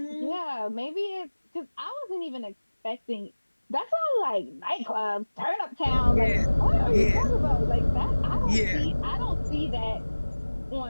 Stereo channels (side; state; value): both; inverted; correlation -1.00